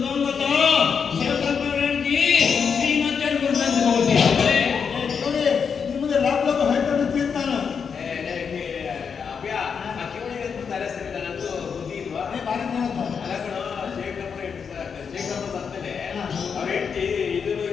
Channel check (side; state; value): right; quieter; 6.4 dB